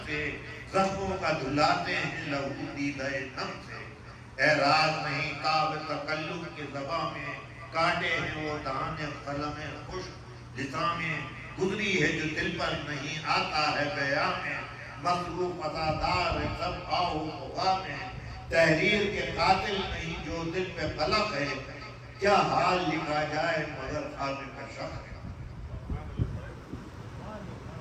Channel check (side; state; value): both; identical; correlation 1.00